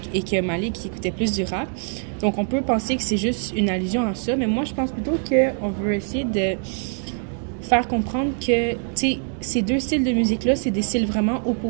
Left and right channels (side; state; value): left; silent; 58 dB below the other